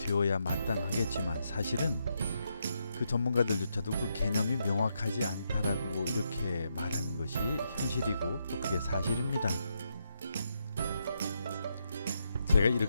마땅하겠지만 사실은 그 전문가들조차도 그 개념이 명확하지 않다라고 이렇게 말하는 것이 현실이고 또 그게 사실입니다. 제가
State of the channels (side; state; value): both; inverted; correlation -0.81